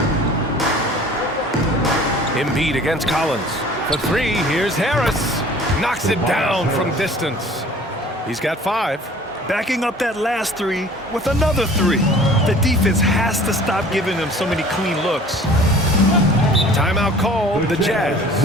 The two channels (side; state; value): both; normal; correlation 0.48